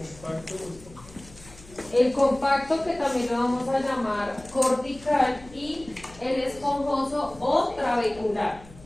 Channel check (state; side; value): noise; left; hum, 21 dB below the sound